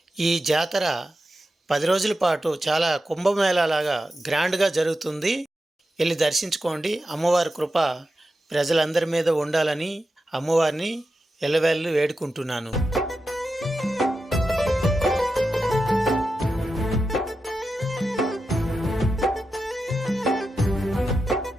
ఈ జాతర 10 రోజుల పాటు చాలా కుంభమేళాలాగా గ్రాండ్గా జరుగుతుంది. వెళ్ళి దర్శించుకోండి. అమ్మవారి కృప ప్రజలందరి మీద ఉండాలని అమ్మవారిని ఎల్లవేళలు వేడుకుంటున్నాను.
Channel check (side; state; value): both; normal; correlation 0.90